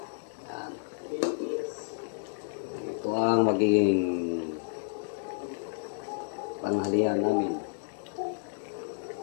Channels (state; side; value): silent; right; digital silence